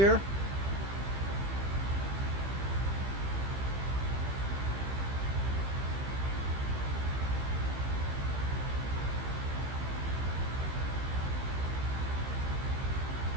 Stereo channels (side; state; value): left; late; 15 ms